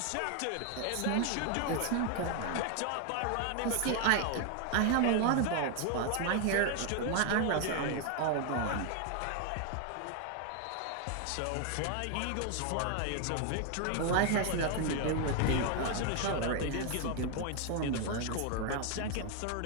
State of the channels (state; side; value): different; both; correlation 0.01